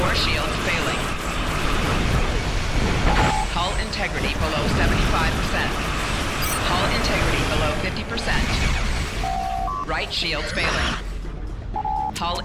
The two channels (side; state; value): both; identical; correlation 1.00